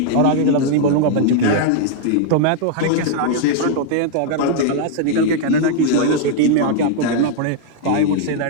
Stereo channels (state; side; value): different; both; correlation 0.00